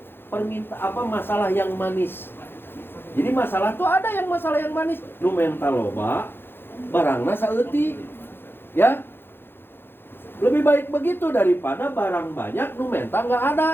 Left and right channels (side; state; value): right; late; 0.10 ms